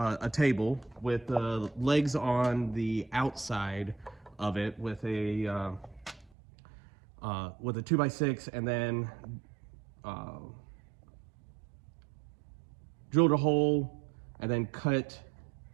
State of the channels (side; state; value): left; drops out; at 6.3 s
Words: table with legs on the outside of it with a 2x6, and then drilled a hole and then cut